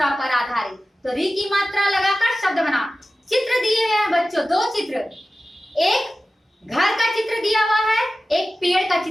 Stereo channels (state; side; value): normal; both; correlation 0.95